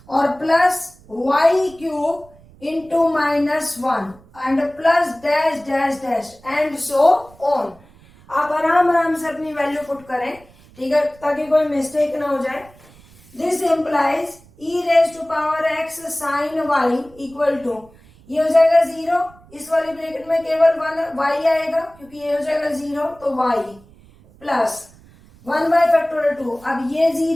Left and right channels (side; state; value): right; noise; rumble, 26 dB below the sound